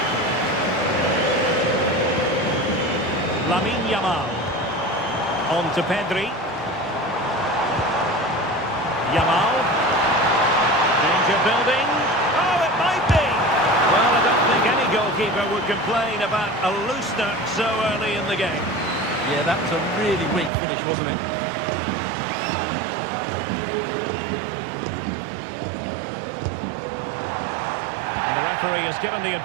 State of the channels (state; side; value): drops out; left; at 20.5 s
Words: Lamine Yamal. On to Pedri. Yamal. Danger building. Oh, it might be! Well, I don't think any goalkeeper would complain about a loosener so early in the game. Yeah, that was a really weak finish, wasn't it? The referee has given the